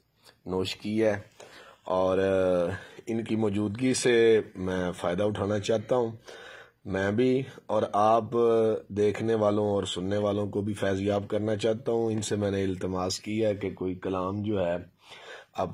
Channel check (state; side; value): identical; both; correlation 1.00